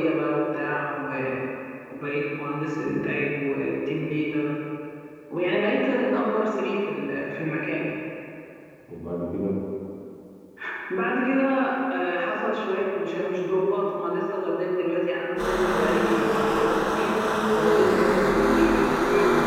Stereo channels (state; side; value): identical; both; correlation 1.00